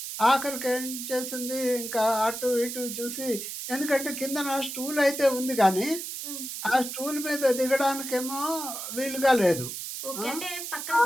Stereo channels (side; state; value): right; noise; hiss, 7 dB below the sound